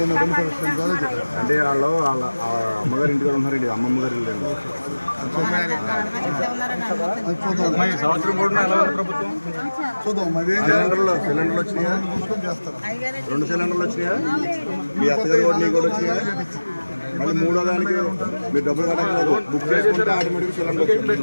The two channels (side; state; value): both; inverted; correlation -1.00